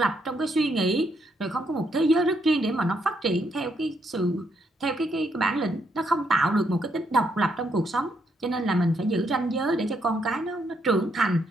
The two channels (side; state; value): both; normal; correlation 0.75